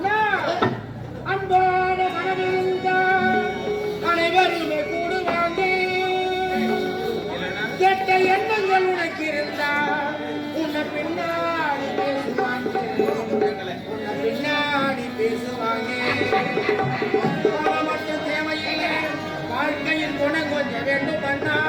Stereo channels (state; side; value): identical; both; correlation 1.00